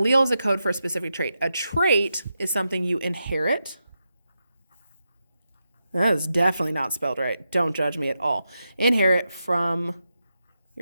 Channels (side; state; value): both; inverted; correlation -0.87